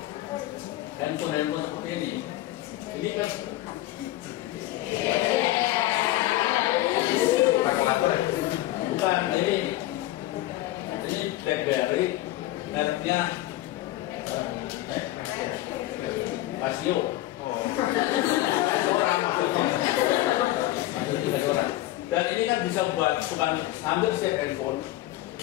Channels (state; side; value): quieter; right; 16.0 dB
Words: handphone seperti ini kan kalkulator ya? Bukan, ini BlackBerry, mereknya Casio. Orang maksudnya. Dan ini kan bisa buat bukan hampir setiap handphone